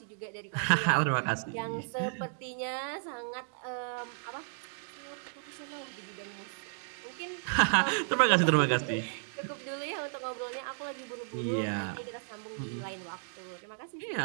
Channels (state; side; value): silent; left; digital silence